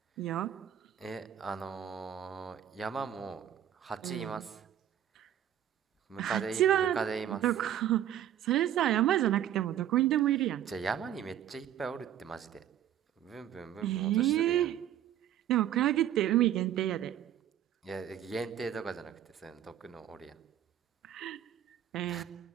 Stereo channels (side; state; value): left; quieter; 10.9 dB